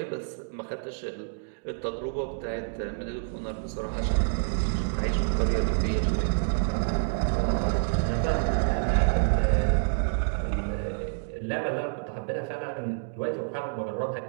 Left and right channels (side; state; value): left; silent; digital silence